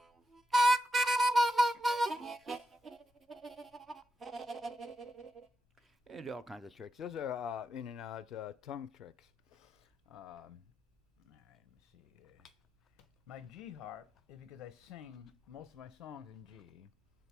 And all kinds of tricks. Those are in and out tongue tricks. All right, let me see here. My G harp is because I sing most of my songs in G.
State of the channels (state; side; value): normal; both; correlation 0.86